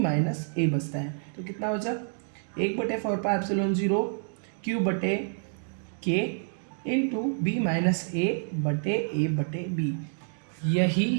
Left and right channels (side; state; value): left; silent; digital silence